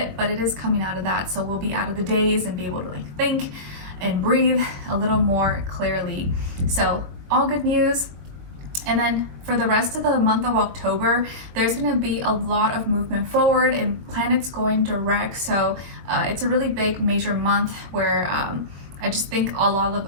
but it is coming out of that. So we'll be out of the days and be able to like think and breathe a little more clearly. So all good news. And then for the rest of the month of October, there's going to be a lot of movement forward and planets going direct. So it's a really big major month where I just think a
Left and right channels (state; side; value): late; left; 22 ms